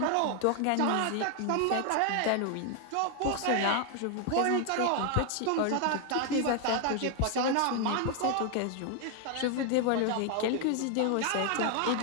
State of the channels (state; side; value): different; both; correlation 0.00